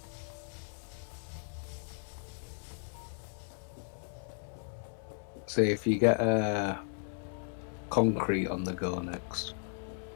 See, if you get a concrete on the go next.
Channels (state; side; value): silent; right; 54 dB below the other